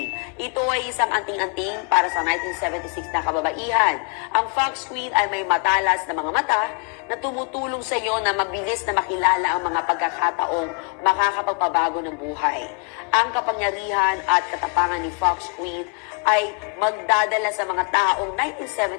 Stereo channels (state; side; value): quieter; right; 39.4 dB